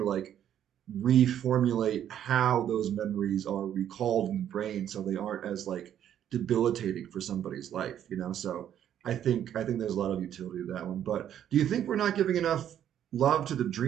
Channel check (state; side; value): quieter; left; 10.3 dB